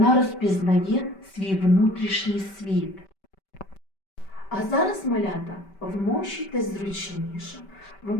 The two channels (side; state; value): right; late; 5.2 ms